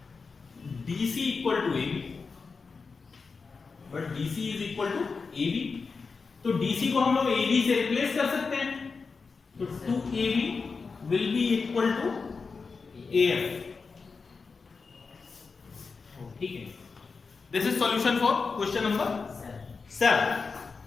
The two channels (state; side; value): quieter; right; 4.7 dB